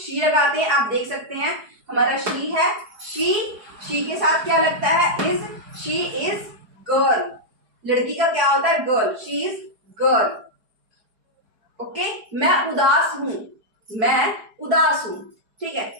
लगाते हैं। आप देख सकते हैं हमारा शी है, शी के साथ क्या लगता है, इज, शी इज गर्ल। लड़की का क्या होता है, girl, she is girl. Okay, मैं उदास हूं, मैं उदास हूं, ठीक है,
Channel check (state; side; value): late; left; 4.8 ms